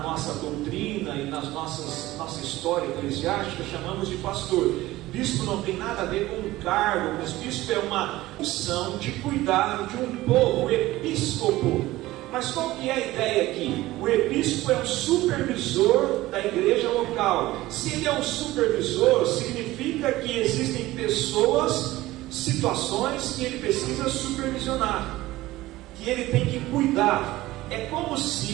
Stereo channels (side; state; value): left; quieter; 17.4 dB